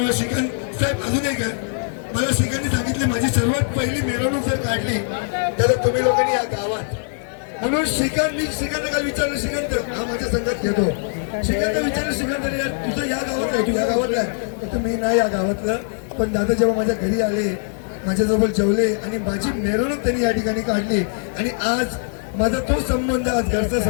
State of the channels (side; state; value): right; silent; 65 dB below the other